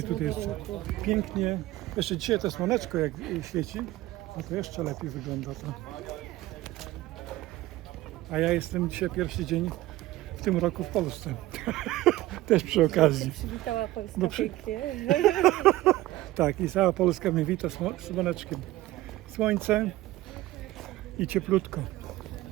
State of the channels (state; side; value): quieter; left; 16.9 dB